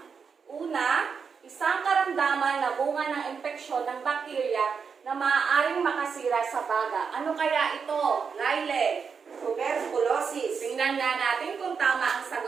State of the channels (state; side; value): quieter; left; 6.0 dB